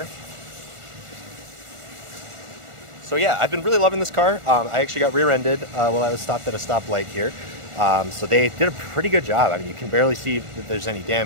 So yeah, I've been really loving this car. I actually got rear-ended while I was stopped at a stoplight here. So they did a pretty good job. I mean, you can barely see that there's any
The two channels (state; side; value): late; left; 1.4 ms